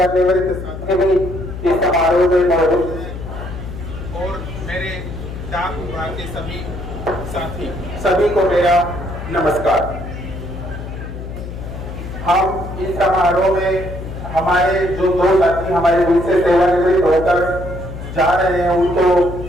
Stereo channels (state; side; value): noise; left; hum, 9 dB below the sound